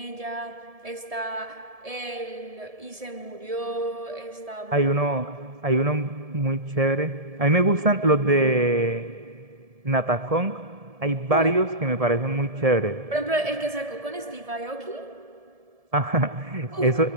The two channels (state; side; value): late; left; 1.7 ms